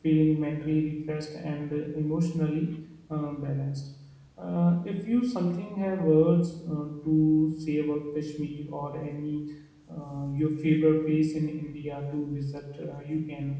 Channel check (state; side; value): identical; both; correlation 1.00